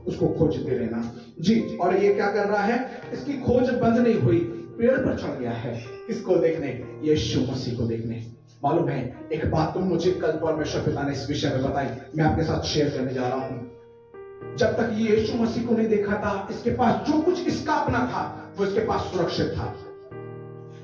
उसको खोजते रहना जी। और ये क्या कर रहा है? इसकी खोज बंद नहीं हुई, पेड़ पर चढ़ गया है। किसको देखने? यीशु मसीह को देखने। मालूम है, एक बात तो मुझे कल परमेश्वर पिता ने इस विषय में बताई, मैं आपके साथ शेयर करने जा रहा हूं। जब तक ये यीशु मसीह को नहीं देखा था, इसके पास जो कुछ इसका अपना था वो इसके पास सुरक्षित था।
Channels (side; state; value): both; identical; correlation 1.00